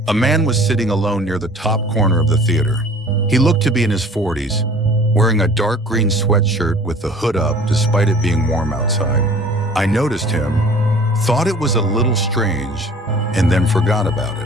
A man was sitting alone near the top corner of the theater. He looked to be in his 40s, wearing a dark green sweatshirt with the hood up despite it being warm outside. I noticed him, thought it was a little strange, and then forgot about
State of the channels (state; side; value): normal; both; correlation 0.48